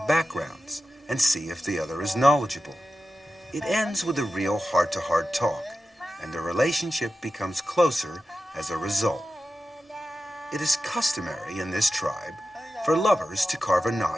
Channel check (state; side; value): normal; both; correlation 0.93